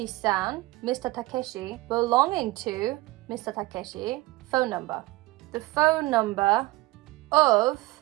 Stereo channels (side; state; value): left; quieter; 20.0 dB